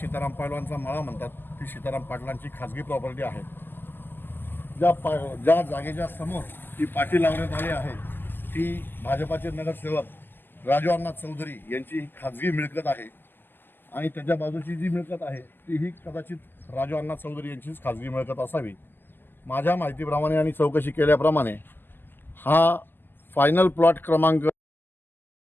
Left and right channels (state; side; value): late; right; 0.094 ms